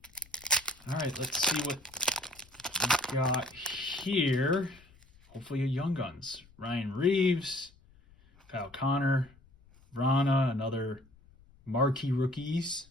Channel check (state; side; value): noise; left; rumble, 27 dB below the sound